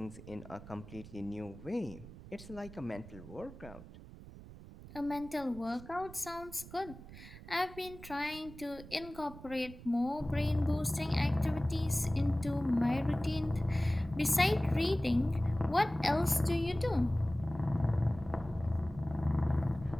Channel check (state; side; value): noise; right; rumble, 16 dB below the sound